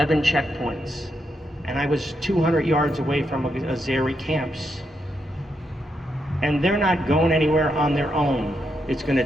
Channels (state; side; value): normal; both; correlation 0.81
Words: checkpoints, and I was 200 yards away from Azeri camps. And they're not going anywhere on their own. It's going